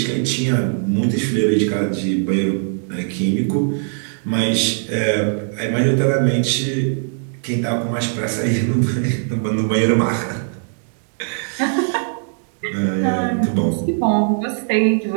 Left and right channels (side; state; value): left; silent; 66 dB below the other